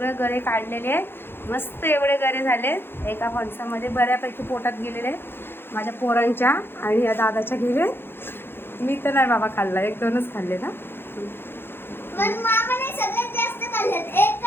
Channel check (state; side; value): late; right; 0.11 ms